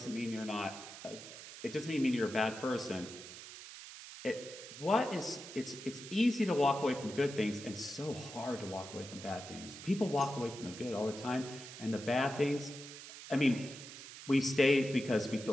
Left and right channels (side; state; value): right; noise; hiss, 13 dB below the sound